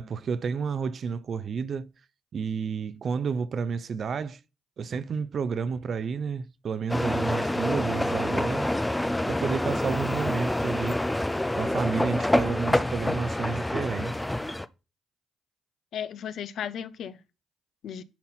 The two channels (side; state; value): both; normal; correlation 0.90